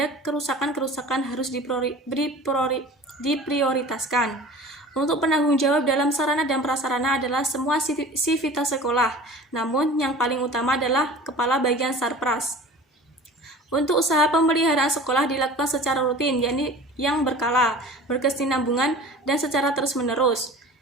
kerusakan-kerusakan harus diprioritaskan. Untuk penanggung jawab dalam sarana dan prasarana adalah semua sivitas sekolah, namun yang paling utama adalah Kepala Bagian Sarpras. Untuk usaha pemeliharaan sekolah dilakukan secara rutin, yakni yang berkala, berkesinambungan, dan secara terus-menerus,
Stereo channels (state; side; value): normal; both; correlation 0.40